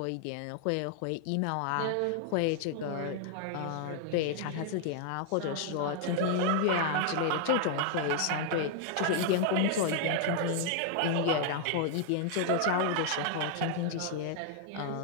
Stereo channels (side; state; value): both; different; correlation 0.00